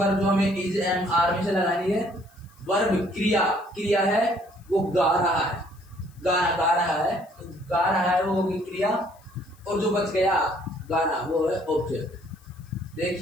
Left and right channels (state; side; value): noise; left; hiss, 30 dB below the sound